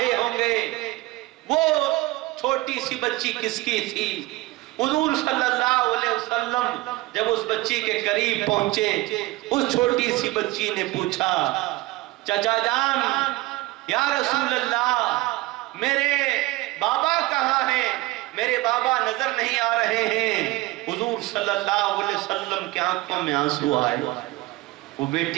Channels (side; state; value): left; quieter; 19.7 dB